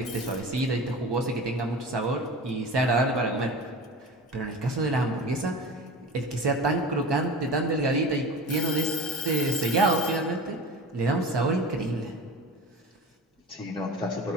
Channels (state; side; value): normal; both; correlation 0.33